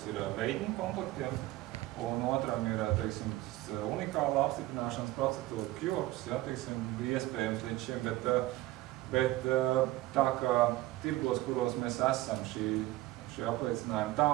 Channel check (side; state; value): left; quieter; 17.5 dB